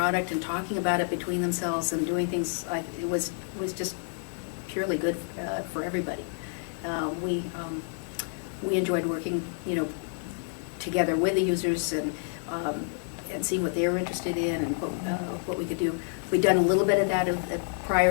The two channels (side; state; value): right; silent; 59 dB below the other